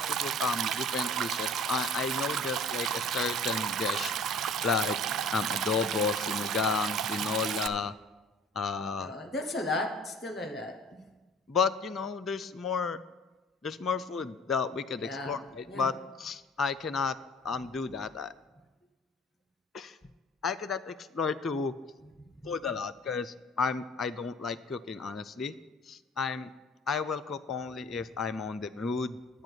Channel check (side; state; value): both; normal; correlation 0.48